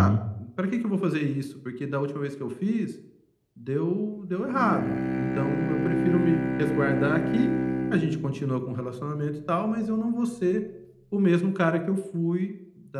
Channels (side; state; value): both; identical; correlation 1.00